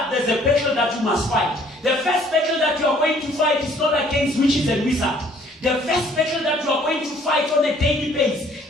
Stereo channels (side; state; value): both; normal; correlation 0.59